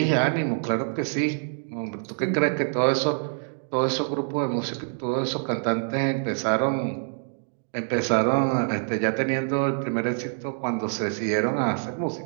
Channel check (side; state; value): left; silent; digital silence